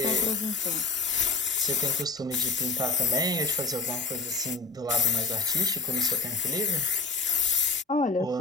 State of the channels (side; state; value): right; quieter; 4.0 dB